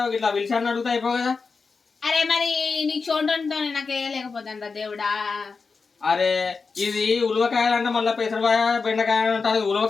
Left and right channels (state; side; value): quieter; right; 4.7 dB